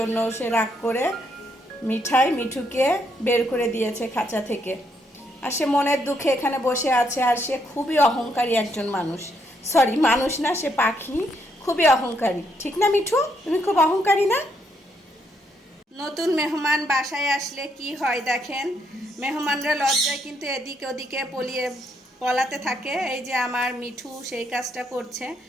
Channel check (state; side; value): normal; both; correlation 0.75